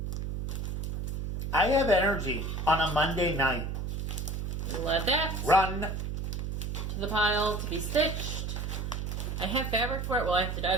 I have energy on a Monday night. Let that Run. to the pile to be stitched. I have fabric for it. Well, I have to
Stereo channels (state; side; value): noise; right; hum, 3 dB below the sound